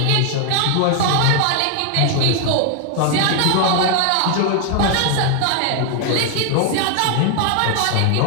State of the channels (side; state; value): both; different; correlation 0.00